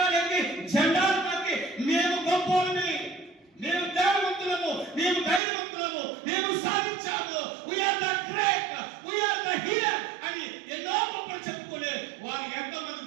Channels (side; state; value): left; drops out; at 5.4 s